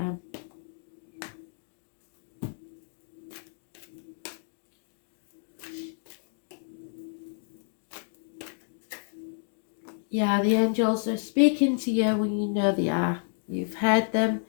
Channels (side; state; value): right; silent; digital silence